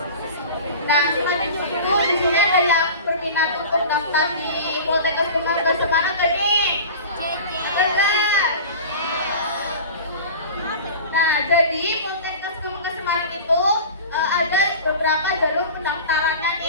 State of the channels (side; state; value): both; inverted; correlation -0.36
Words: Nah, selain itu di sini ada yang berminat untuk daftar di Poltekkes Kemangga Semarang gak nih? Enggak. Nah, jadi Poltekkes Kemangga Semarang itu ada beberapa jalur pendaftarannya